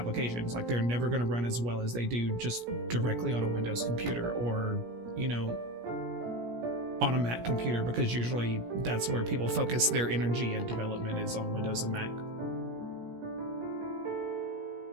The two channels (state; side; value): late; left; 17 ms